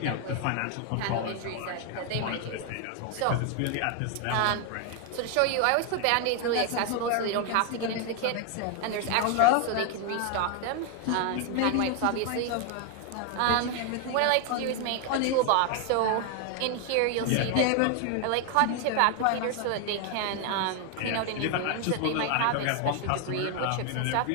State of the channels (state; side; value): different; both; correlation 0.01